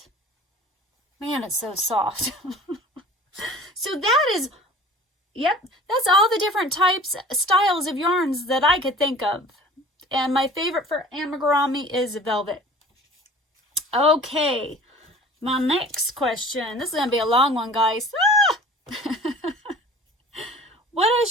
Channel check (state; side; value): normal; both; correlation 0.44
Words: Man, it's so soft. So that is, yep, that's all the different types, styles of yarns that I could think of. And my favorite for amigurumi is velvet. Okay, my next question. This is going to be a long one, guys. Ah! What is